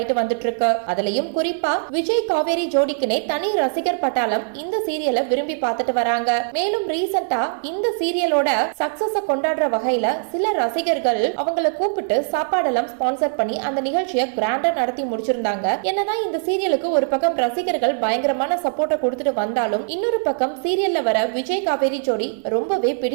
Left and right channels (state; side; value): silent; left; digital silence